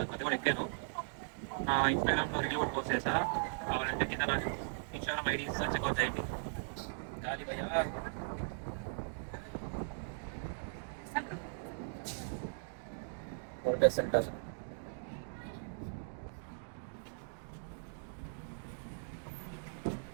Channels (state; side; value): silent; left; digital silence